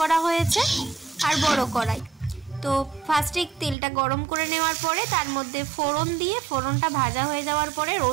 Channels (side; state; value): left; drops out; at 3.8 s